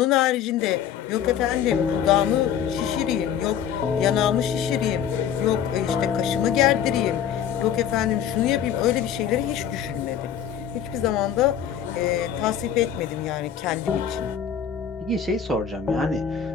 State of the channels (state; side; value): quieter; right; 8.9 dB